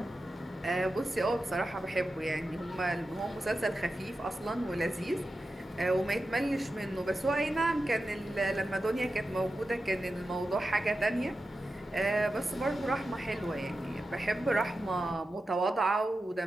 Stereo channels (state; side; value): normal; both; correlation 0.92